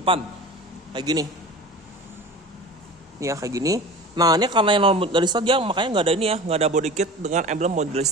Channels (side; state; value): both; normal; correlation 0.36